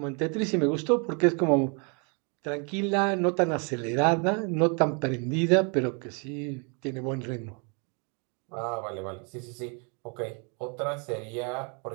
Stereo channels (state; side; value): quieter; left; 36.3 dB